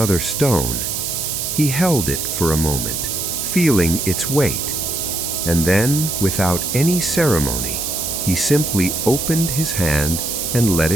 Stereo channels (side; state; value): right; noise; hiss, 2 dB below the sound